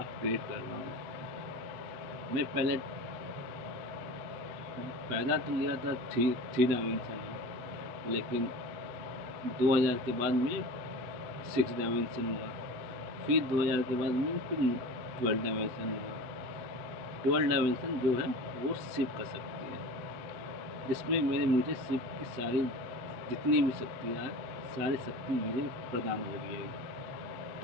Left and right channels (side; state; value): left; late; 8.1 ms